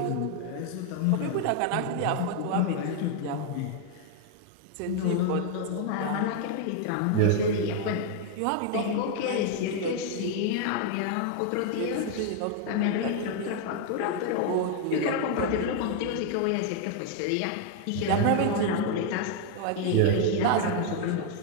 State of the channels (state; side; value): different; both; correlation 0.00